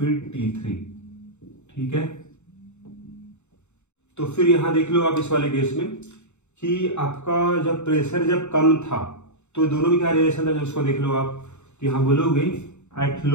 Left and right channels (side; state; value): right; late; 0.83 ms